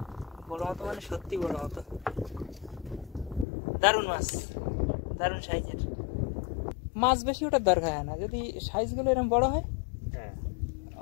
বড় মতো মানে সত্যি বড় মতো, দারুণ মাছ, দারুণ সাইজের মাছ। বেশি ওটার দরকার হয় না, যদি সাইজগুলো এরকম বড় হয়, হ্যাঁ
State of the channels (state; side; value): drops out; right; at 3.5 s